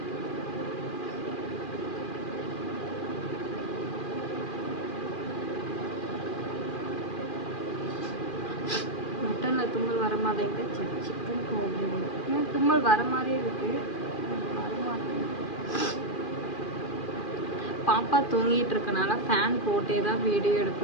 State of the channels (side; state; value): right; late; 2.4 ms